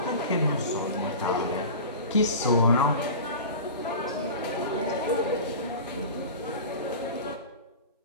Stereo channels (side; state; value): both; inverted; correlation -0.33